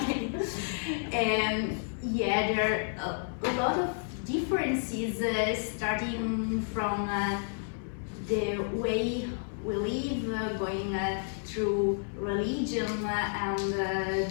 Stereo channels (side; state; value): right; silent; digital silence